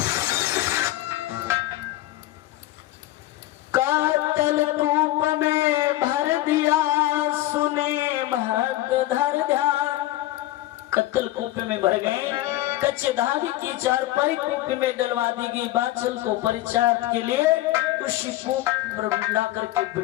कत्तल कूप में भर गए। कच्चे धागे की चारपाई कूप में डलवा दी गई। बाछल को परीक्षार्थ के लिए उसी कूप पर ला करके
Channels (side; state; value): right; quieter; 16.1 dB